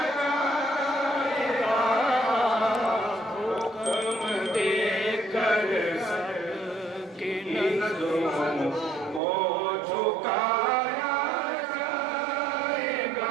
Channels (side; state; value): left; drops out; at 9.2 s